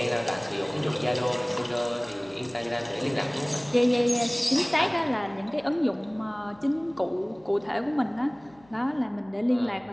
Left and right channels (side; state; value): left; noise; hum, 28 dB below the sound